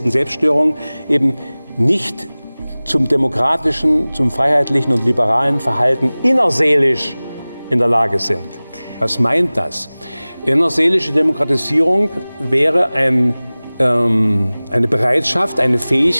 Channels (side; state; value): both; inverted; correlation -0.99